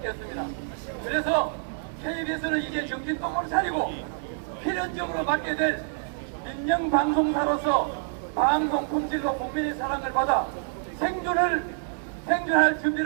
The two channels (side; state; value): left; silent; digital silence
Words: 없습니다. 그래서 KBS는 이제 정신 똑바로 차리고 필연적으로 맡게 될 민영방송사로서 방송 품질로 국민의 사랑을 받아 생존할